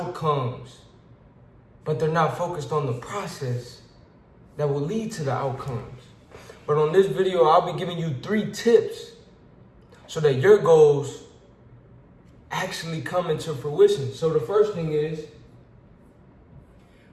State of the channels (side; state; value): both; identical; correlation 1.00